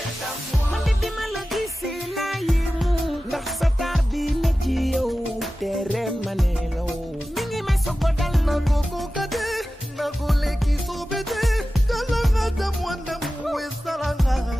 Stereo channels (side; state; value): both; normal; correlation 0.95